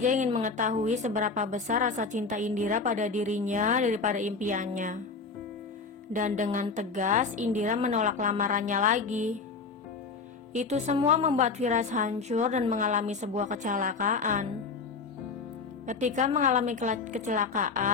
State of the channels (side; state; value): right; quieter; 4.6 dB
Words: ingin mengetahui seberapa besar rasa cinta Indira pada dirinya daripada impiannya. Dan dengan tegas, Indira menolak lamarannya lagi. Itu semua membuat Firas hancur dan mengalami sebuah kecelakaan. Ketika mengalami